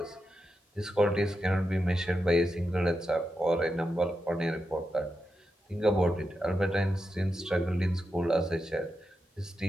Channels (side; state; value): both; normal; correlation 0.87